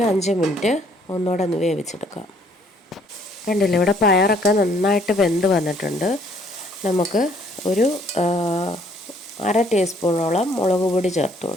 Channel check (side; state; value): both; normal; correlation 0.63